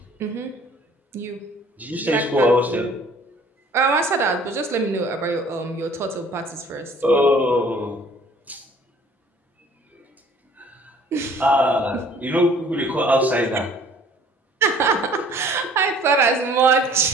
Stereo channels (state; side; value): normal; both; correlation 0.54